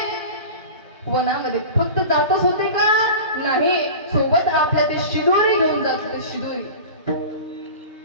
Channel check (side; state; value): both; inverted; correlation -0.34